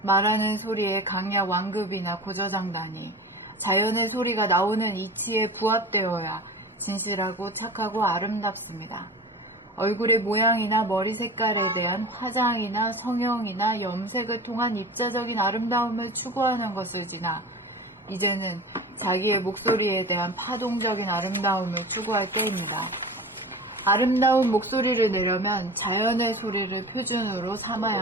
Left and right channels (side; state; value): both; normal; correlation 0.33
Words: 말하는 소리의 강약 완급이나 고저장단이 자연의 소리가 나오는 이치에 부합되어야 진실하고 착하고 아름답습니다. 얼굴의 모양이나 머리 색깔에 대한 화장이나 성형이나 염색을 통한 입자적인 아름다움을 추구하는 것을 지나 이제는 자기의 목소리에 대한 파동적인 아름다움을 추구할 때입니다. 아름다운 목소리를 내려면 자연의 소리를 표준으로